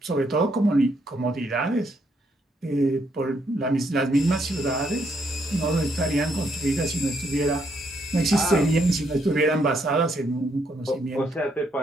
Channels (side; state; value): both; normal; correlation 0.74